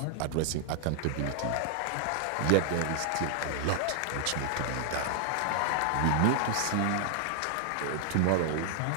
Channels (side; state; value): both; different; correlation -0.01